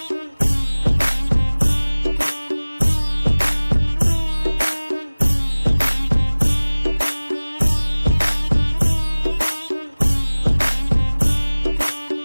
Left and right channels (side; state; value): both; inverted; correlation -0.99